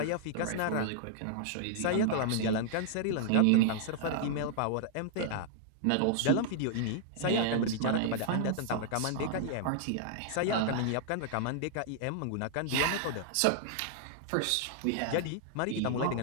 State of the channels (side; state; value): both; different; correlation -0.01